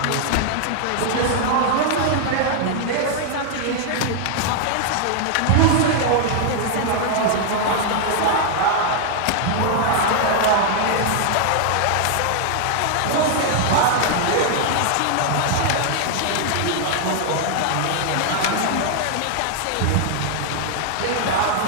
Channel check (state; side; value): different; both; correlation 0.00